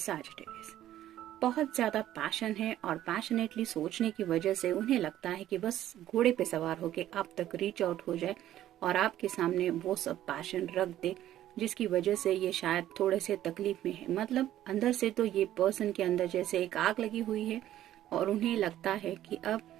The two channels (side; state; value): left; quieter; 12.8 dB